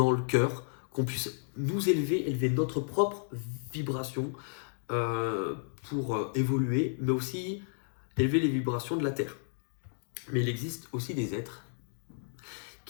le cœur, qu'on puisse nous élever notre propre vibration pour évoluer, mais aussi élever les vibrations de la Terre. Mais il existe aussi des êtres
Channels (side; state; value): right; silent; digital silence